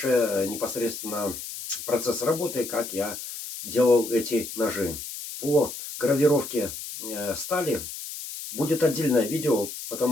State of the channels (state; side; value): noise; left; hiss, 9 dB below the sound